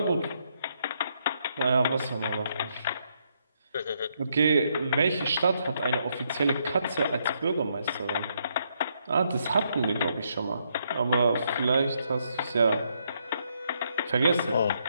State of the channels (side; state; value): both; inverted; correlation -0.75